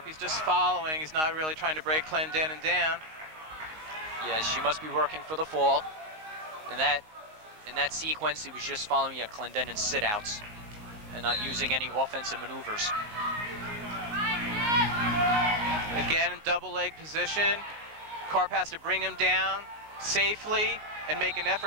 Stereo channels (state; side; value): late; left; 19 ms